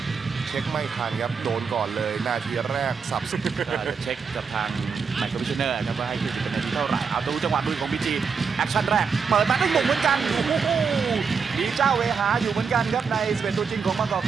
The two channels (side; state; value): left; quieter; 5.7 dB